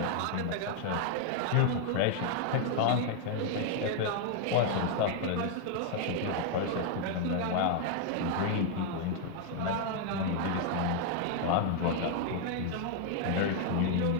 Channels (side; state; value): both; different; correlation 0.00